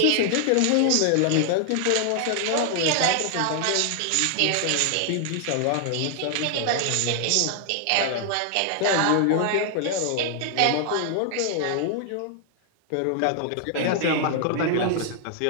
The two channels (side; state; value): both; different; correlation 0.00